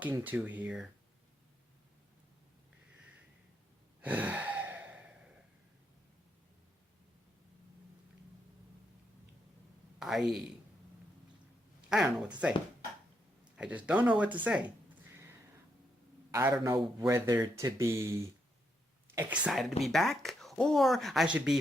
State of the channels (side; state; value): both; normal; correlation 0.79